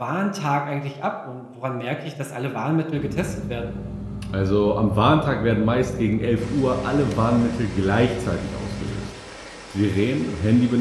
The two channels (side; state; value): both; identical; correlation 1.00